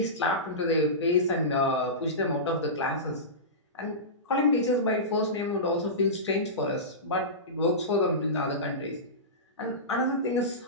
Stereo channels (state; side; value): normal; both; correlation -0.20